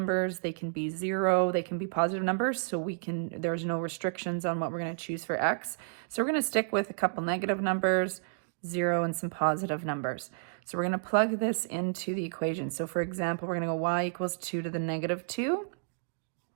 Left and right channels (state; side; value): silent; left; digital silence